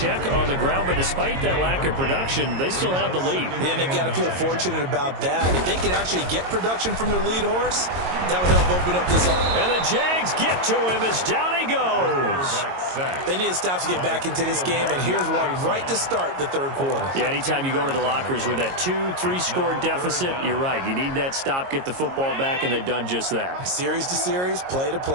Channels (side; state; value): left; late; 22 ms